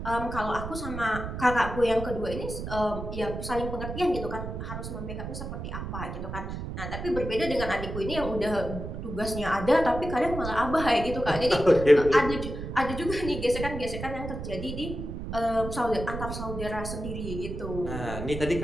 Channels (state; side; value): noise; right; rumble, 7 dB below the sound